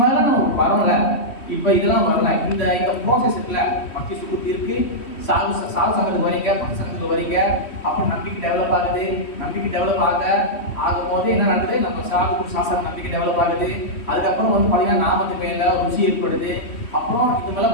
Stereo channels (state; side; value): late; right; 3.1 ms